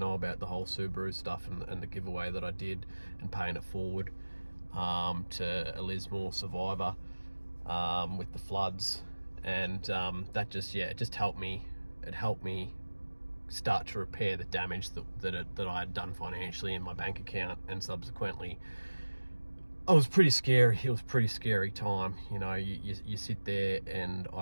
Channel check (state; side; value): inverted; both; correlation -1.00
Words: about the whole Subaru stuff and the giveaway that I did, and paying it forward to a Lismore survivor with the floods. And that just, yeah, it just helped me. It helped me start to repair the damage that I had done financially in my bank account. And subsequently, it was pretty scary. It was a pretty scary time. You know, you sit there and